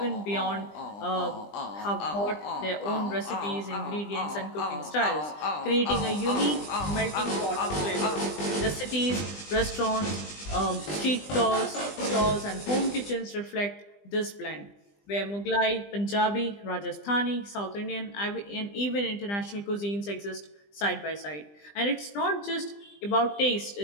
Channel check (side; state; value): right; late; 20 ms